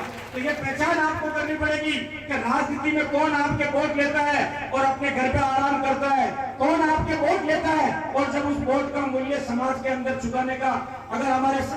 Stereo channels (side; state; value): both; identical; correlation 1.00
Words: तो ये पहचान आपको करनी पड़ेगी कि राजनीति में कौन आपके वोट लेता है और अपने घर पे आराम करता है, कौन आपके वोट लेता है और जब उस वोट का मूल्य समाज के अंदर चुकाने का, अगर हमारे